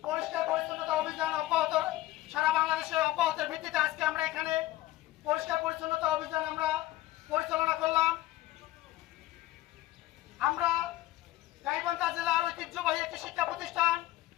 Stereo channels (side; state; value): right; quieter; 16.1 dB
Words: পরিষ্কার পরিচ্ছন্নতা অভিযান অব্যাহত, সারা বাংলাদেশে অব্যাহতের ভিত্তিতে আজকে আমরা এখানে পরিষ্কার পরিচ্ছন্নতা অভিযান আমরা পরিচালনা করলাম। আমরা গাইবান্ধা জেলার ঐতিহ্যবাহী একটি শিক্ষা প্রতিষ্ঠান